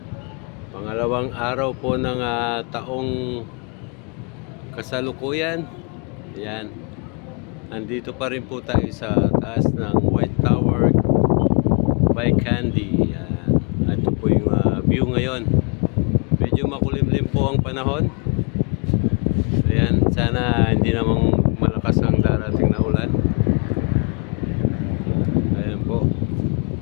Pangalawang araw po ng taong kasalukuyan. Ayan. Nandito pa rin po tayo sa taas ng White Tower by Candy. Ayan. Ito po yung view ngayon. Medyo makulimlim po ang panahon. Ayan, sana hindi namang malakas ang darating na ulan. Ayan po.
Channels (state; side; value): quieter; right; 38.5 dB